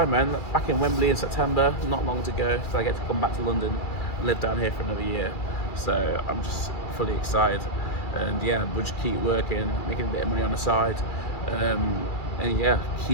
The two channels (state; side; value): late; right; 2.3 ms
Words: man. Back in Wembley in September, not long to go, so I get to come back to London and live down here for another year. So I'm just fully excited. And yeah, we'll just keep working, making a bit of money on the side. And yeah,